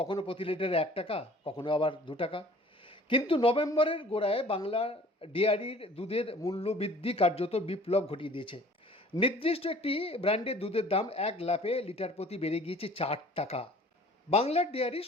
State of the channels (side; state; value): both; normal; correlation 0.50